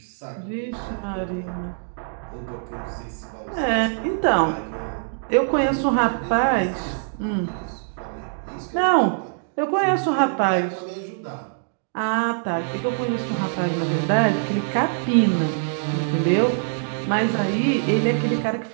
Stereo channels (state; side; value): silent; left; digital silence